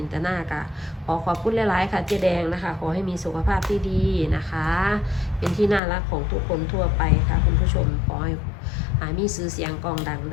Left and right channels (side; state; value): right; drops out; at 5.8 s